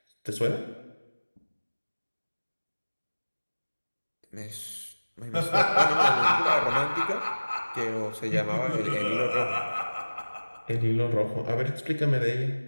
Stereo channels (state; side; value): inverted; both; correlation -1.00